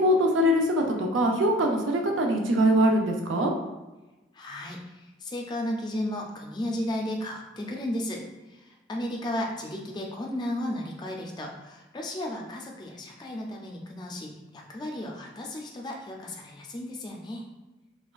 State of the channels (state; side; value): normal; both; correlation 0.49